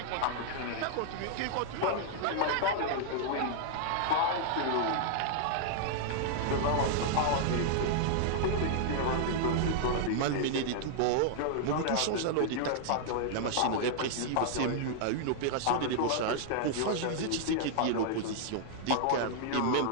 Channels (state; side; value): different; both; correlation -0.01